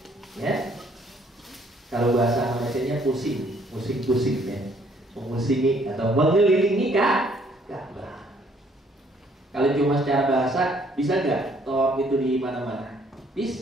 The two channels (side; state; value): both; normal; correlation 0.64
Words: Ya. Kalau bahasa Malaysianya pusing ya, memusingi atau mengelilingi Ka'bah. Kalau cuma secara bahasa, bisa nggak tawaf itu di mana-mana?